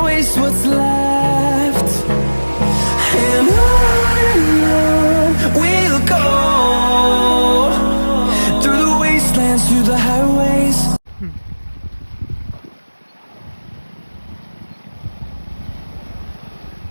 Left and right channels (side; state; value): both; inverted; correlation -1.00